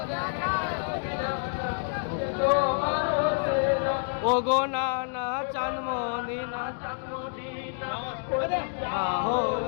তোমার হোসেনা ওগো নানা চাঁদ মদিনা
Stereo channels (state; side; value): silent; right; 59 dB below the other